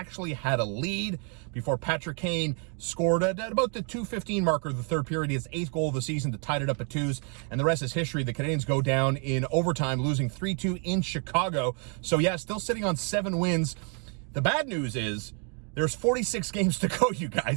had a lead before Patrick Kane scored at about the 2:15 marker of the third period, his 8th goal of the season to tie it up at 2s, and the rest is history. The Canadiens go down in overtime, losing 3-2 in Chicago. So yeah, still sitting on 7 wins. The bad news is there's 46 games to go, you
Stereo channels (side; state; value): left; quieter; 38.3 dB